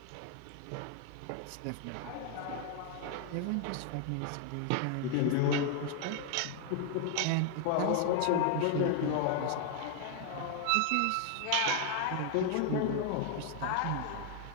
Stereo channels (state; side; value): different; both; correlation 0.00